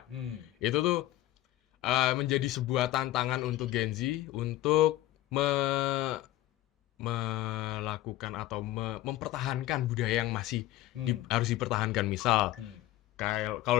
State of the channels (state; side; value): quieter; right; 15.5 dB